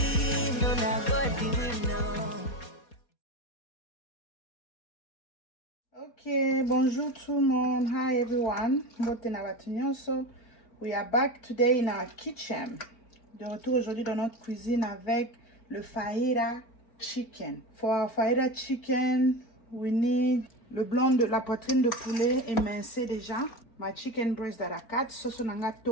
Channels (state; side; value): late; right; 4.0 ms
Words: no not go do it, no. Okay, bonjour tout le monde. Hi everyone. So we are back today in our kitchen. De retour aujourd'hui dans notre cuisine avec le fajita chicken. For our fajita chicken, we need le blanc de la poitrine de poulet émincé déjà. My chicken breast à la 4, sauce nanga